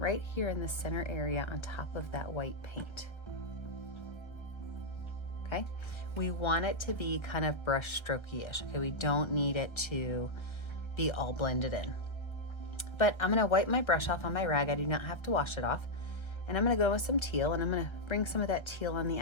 here in the center area on top of that white paint. Okay, we want it to be kind of brush strokey-ish. Okay, we don't need it to be all blended in. But I'm gonna wipe my brush off on my rag. I do not have to wash it off. And I'm gonna go with some teal, and I'm gonna bring some of that teal on the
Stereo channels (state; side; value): late; right; 1.3 ms